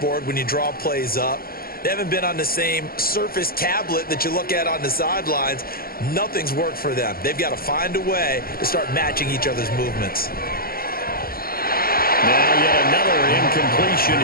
when you draw plays up. They haven't been on the same surface tablet that you look at on the sidelines. Nothing's worked for them. They've got to find a way to start matching each other's movements. Now yet another incompletion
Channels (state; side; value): late; right; 0.43 ms